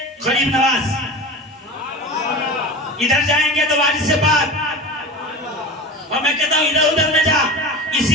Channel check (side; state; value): both; normal; correlation 0.31